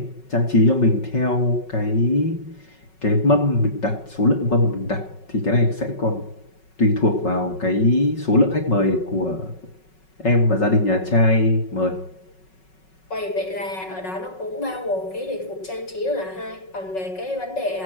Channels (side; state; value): right; late; 5.4 ms